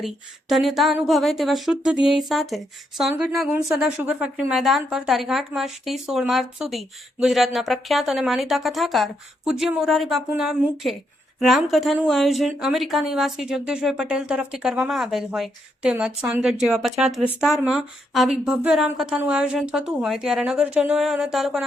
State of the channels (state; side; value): normal; both; correlation 0.78